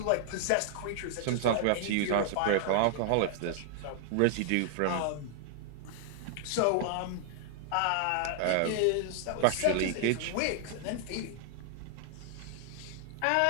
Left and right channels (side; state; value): both; different; correlation 0.00